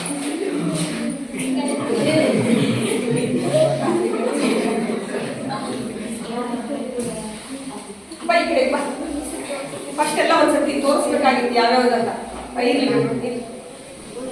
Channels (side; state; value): both; identical; correlation 1.00